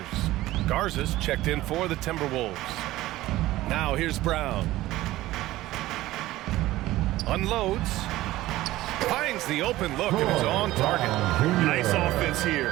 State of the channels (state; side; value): quieter; left; 16.5 dB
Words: Garza's checked in for the Timberwolves. Now here's Brown. Unloads. Finds the open look, and it's on target. Nice offense